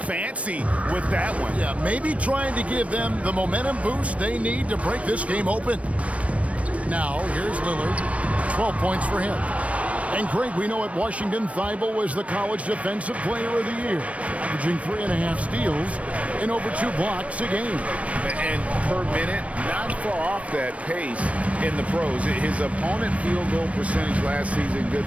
with that one. Yeah, maybe trying to give them the momentum boost they need to break this game open. Now, here's Lillard. 12 points for him. And Greg, we know at Washington, Thybulle was the college defensive player of the year, averaging 3.5 steals and over 2 blocks a game. And per minute, not far off that pace in the pros. His opponent field goal percentage last season good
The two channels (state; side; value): late; left; 0.064 ms